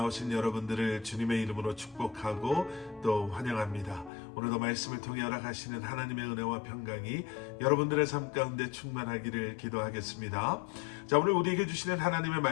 여러분들을 주님의 이름으로 축복하고 또 환영합니다. 오늘도 말씀을 통해 허락하시는 하나님의 은혜와 평강이 여러분들의 삶 가운데 충만하기를 기도하겠습니다. 자, 오늘 우리에게 주시는 하나님의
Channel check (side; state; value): right; drops out; at 4.1 s